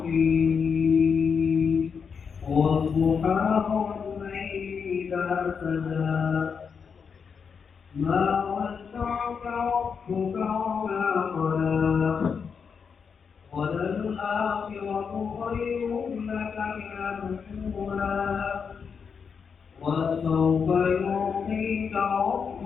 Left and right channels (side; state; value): right; quieter; 6.2 dB